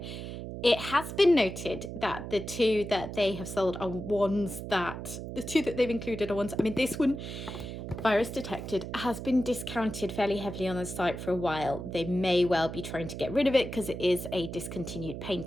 It has been noted that the 2 that they have sold are ones that, the 2 that they've included are ones, I mean, this one, Virus Detected, has been discounted fairly heavily on the site for a while. They may well be trying to get rid of it because it is a discontinued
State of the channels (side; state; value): right; noise; hum, 8 dB below the sound